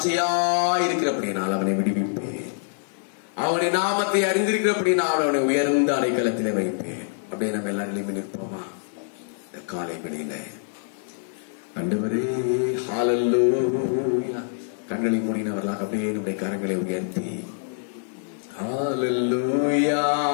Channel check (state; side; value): silent; right; digital silence